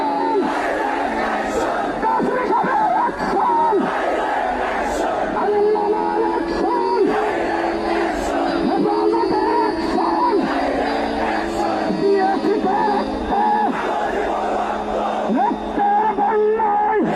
কাসেমি সাহেবের অ্যাকশন, আল্লামার অ্যাকশন, হেফাজতের অ্যাকশন। দিয়েছি রক্ত, রক্তের বন্যায়,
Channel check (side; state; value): both; identical; correlation 1.00